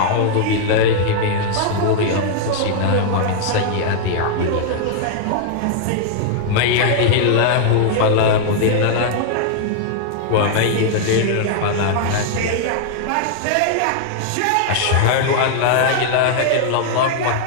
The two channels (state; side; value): different; both; correlation -0.01